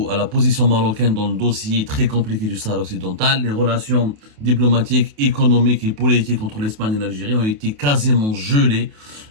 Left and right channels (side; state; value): left; late; 28 ms